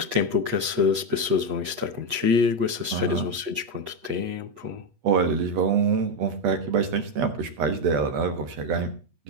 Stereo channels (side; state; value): left; late; 8.3 ms